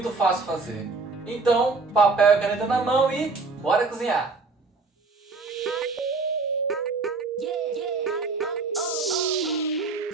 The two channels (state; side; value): quieter; left; 4.0 dB